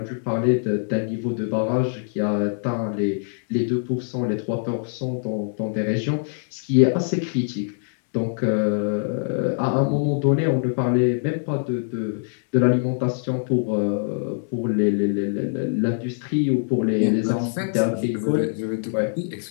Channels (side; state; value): right; silent; digital silence